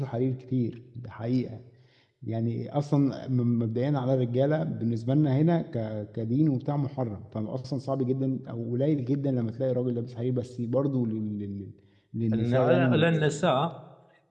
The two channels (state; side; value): identical; both; correlation 1.00